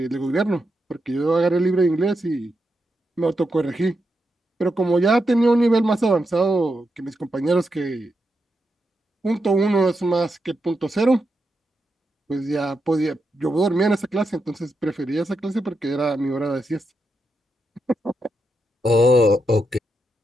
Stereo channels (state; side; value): normal; both; correlation 0.85